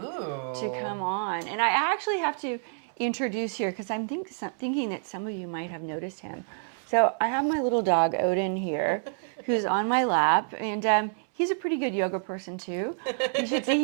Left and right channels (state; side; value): silent; left; 59 dB below the other